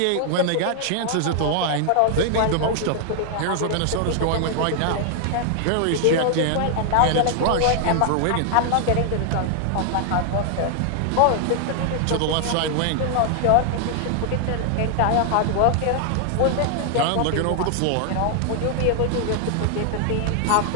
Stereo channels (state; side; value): different; both; correlation 0.00